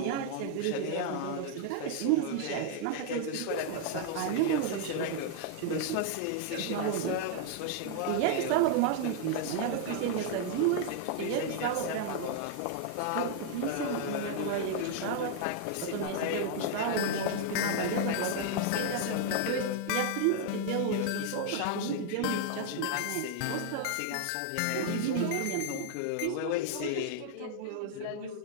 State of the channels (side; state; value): both; different; correlation 0.00